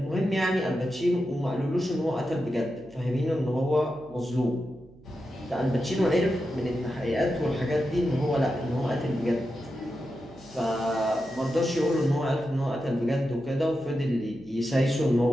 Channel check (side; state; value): right; noise; hum, 24 dB below the sound